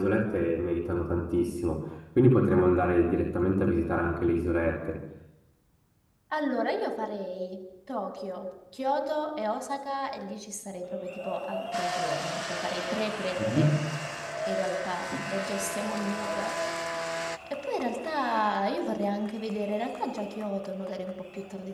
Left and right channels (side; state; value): both; identical; correlation 1.00